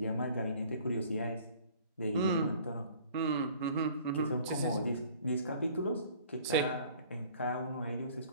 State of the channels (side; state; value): both; inverted; correlation -0.53